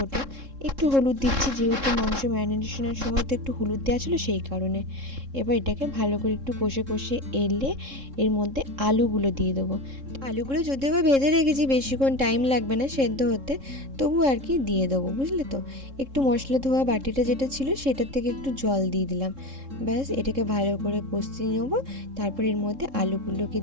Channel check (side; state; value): left; late; 3.7 ms